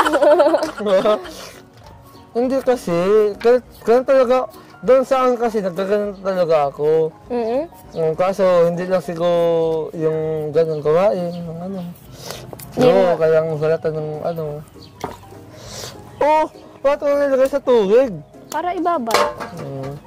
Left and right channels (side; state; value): both; identical; correlation 1.00